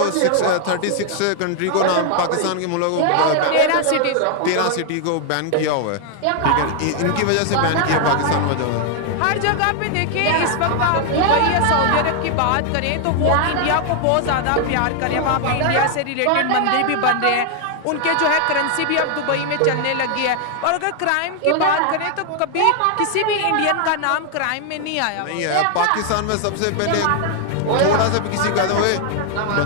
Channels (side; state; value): both; different; correlation 0.00